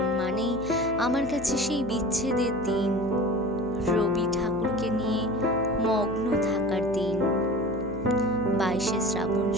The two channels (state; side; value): noise; right; hum, 13 dB below the sound